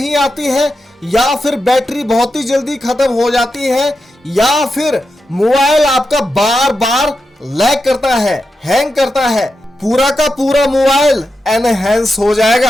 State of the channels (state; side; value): normal; both; correlation 0.88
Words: आती है, या फिर बैटरी बहुत ही जल्दी खत्म हो जाती है, या फिर मोबाइल आपका बार बार लैग करता है, हैंग करता है, पूरा का पूरा मोबाइल एनहेंस हो